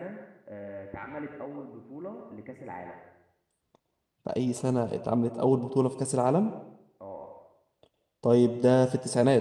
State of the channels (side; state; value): both; identical; correlation 1.00